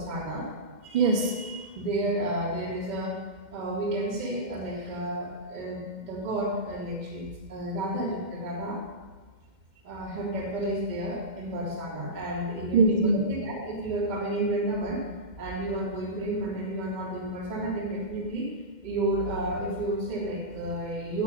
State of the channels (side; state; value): left; late; 2.1 ms